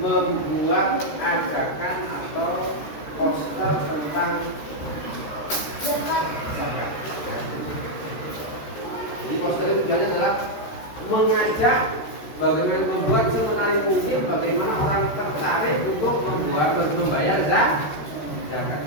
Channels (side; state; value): right; late; 13 ms